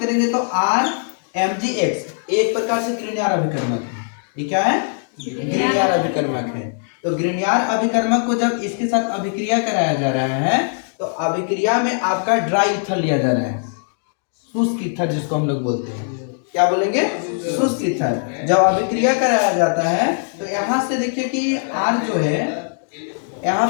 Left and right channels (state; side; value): silent; right; digital silence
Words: तो RMgX एक प्रकार से ग्रीनियर अभिकर्मक है, ये क्या है, ग्रीनियर अभिकर्मक है। तो ग्रीनियर अभिकर्मक को जब इसके साथ अभिक्रिया कराया जा रहा है तो अभिक्रिया में आपका ड्राई ईथर लिया जा रहा है, शुष्क ईथर जिसको हम लोग बोलते हैं, क्या बोलेंगे, शुष्क ईथर। जब अभिक्रिया कराया जाता है तो यहाँ से देखिए कि R जो है, यहाँ